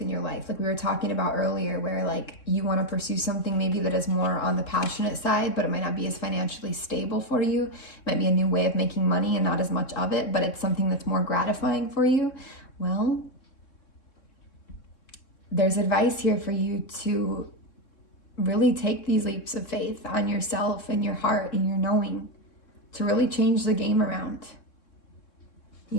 in your life, like we were talking about earlier, where like you want to pursue something maybe that is more on the passionate side, but it might not be as financially stable for you. It might be a new way of making money and not as much of it, but it's something that's more gratifying for you. Well, there's advice here for you to really take these leaps of faith on yourself and your heart and your knowing to really change the game around.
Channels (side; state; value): right; late; 3.6 ms